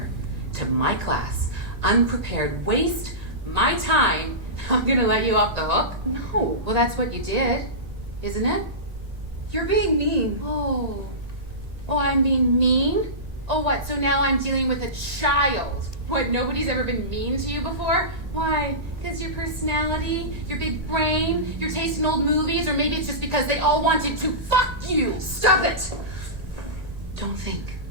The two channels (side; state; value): left; late; 1.9 ms